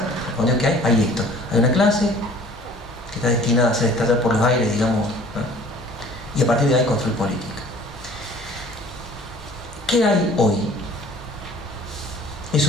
respondió que hay esto. Hay una clase que está destinada a hacer estallar por los aires, digamos, ¿no? Y a partir de ahí construir política. ¿Qué hay hoy?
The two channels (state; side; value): normal; both; correlation 0.50